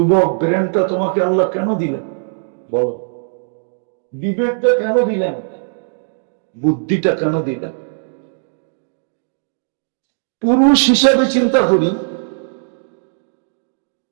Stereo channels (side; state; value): left; silent; digital silence